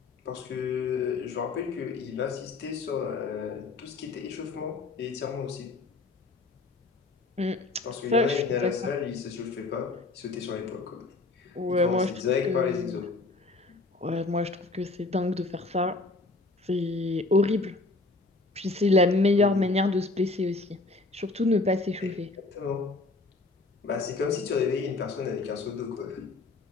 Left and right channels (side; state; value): right; quieter; 3.4 dB